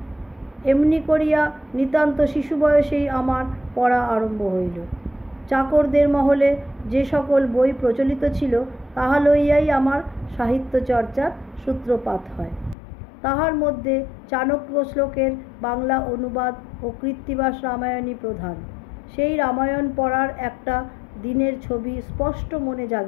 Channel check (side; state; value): right; drops out; at 12.8 s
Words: এমনি করিয়া নিতান্ত শিশু বয়সেই আমার পড়া আরম্ভ হইল। চাকরদের মহলে যে সকল বই প্রচলিত ছিল তাহা লইয়াই আমার সাহিত্য চর্চার সূত্রপাত হয়। তাহার মধ্যে চাণক্য শ্লোকের বাংলা অনুবাদ ও কৃত্তিবাস রামায়ণই প্রধান। সেই রামায়ণ পড়ার একটা দিনের ছবি স্পষ্ট মনে